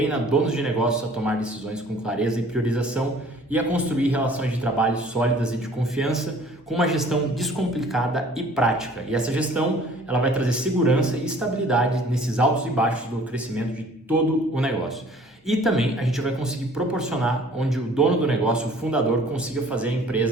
donos de negócios a tomar decisões com clareza e priorização e a construir relações de trabalho sólidas e de confiança com uma gestão descomplicada e prática. E essa gestão, ela vai trazer segurança e estabilidade nesses altos e baixos do crescimento de todo o negócio. E também a gente vai conseguir proporcionar onde o dono do negócio, o fundador, consiga fazer a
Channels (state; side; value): normal; both; correlation 0.52